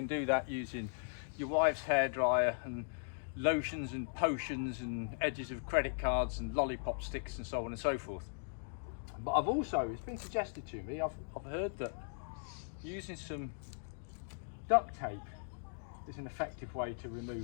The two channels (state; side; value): silent; right; digital silence